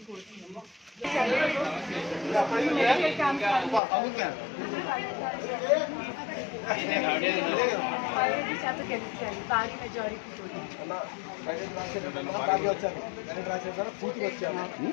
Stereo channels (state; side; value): drops out; right; at 3.8 s